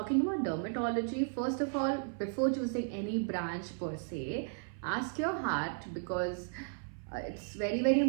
about dermatology, first of all, before choosing any branch per se, ask your heart because it's very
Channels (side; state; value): left; silent; 55 dB below the other